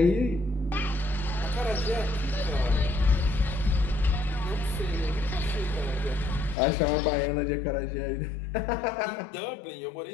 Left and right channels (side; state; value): right; drops out; at 6.6 s